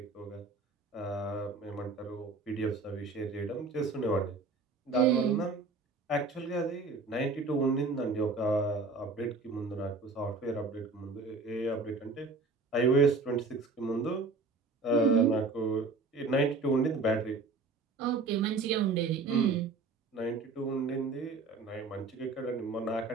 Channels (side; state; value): left; quieter; 3.9 dB